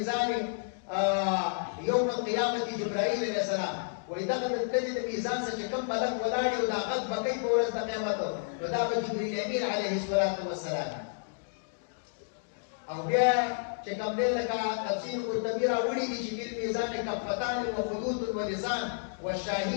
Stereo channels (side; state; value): right; silent; digital silence